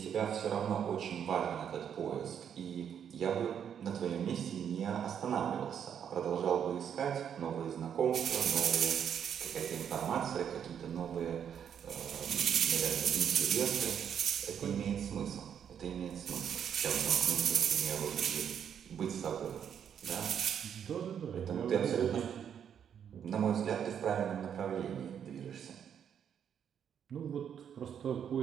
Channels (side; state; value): left; quieter; 8.4 dB